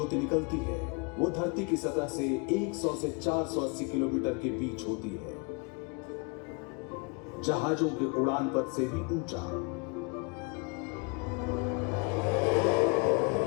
निकलती है वो धरती की सतह से 100 से 480 किलोमीटर के बीच होती है, जहाजों के उड़ान पथ से भी ऊंचा।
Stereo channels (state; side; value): quieter; right; 32.6 dB